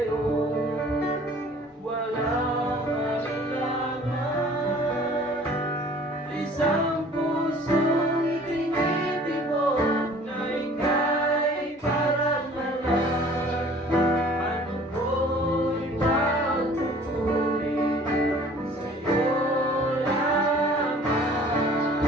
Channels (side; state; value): both; normal; correlation 0.51